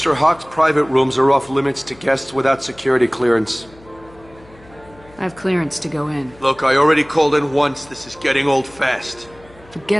Hawk's private rooms are off limits to guests without security clearance. I have clearance to go in. Look, I already called in once. This is getting old fast.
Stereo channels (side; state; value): left; noise; hum, 25 dB below the sound